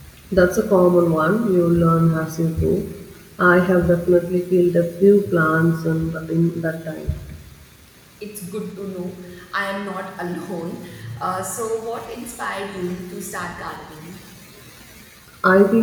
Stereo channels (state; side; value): identical; both; correlation 1.00